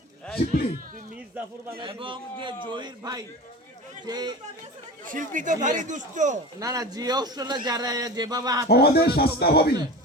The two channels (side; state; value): both; normal; correlation 0.32